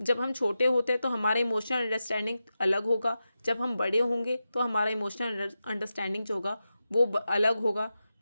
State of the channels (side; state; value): both; inverted; correlation -0.91